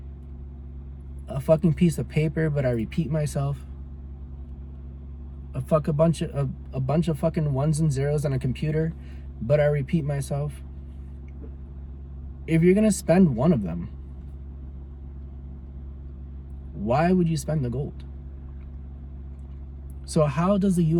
a fucking piece of paper, but I repeat myself, a bunch of fucking ones and zeros on a computer, but I repeat myself. If you're gonna spend one of them, why would you spend the gold? So how does the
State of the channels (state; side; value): identical; both; correlation 1.00